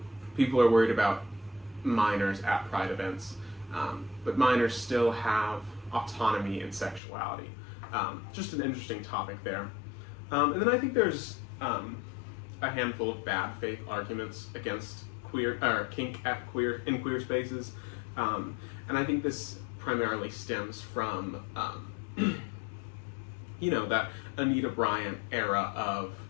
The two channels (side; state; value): right; drops out; at 7.0 s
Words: people are worried about minors at Pride events, but minors still have autonomy and sexuality. Just an interesting topic there. And then I think there's a handful of bad faith arguments against kink in queer spaces, and I think this primarily stems from that Anita Bryant era of,